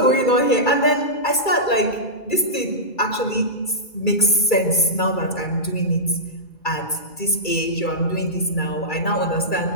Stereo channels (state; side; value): late; right; 2.3 ms